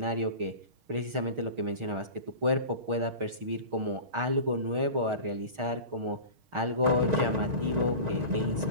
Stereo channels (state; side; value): late; left; 6.4 ms